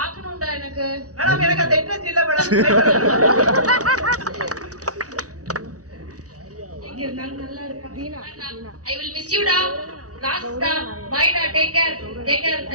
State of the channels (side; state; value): left; late; 0.67 ms